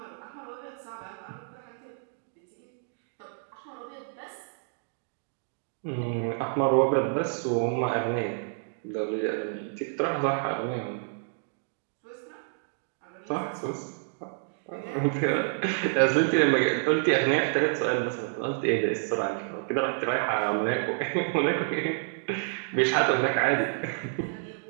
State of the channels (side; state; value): left; silent; digital silence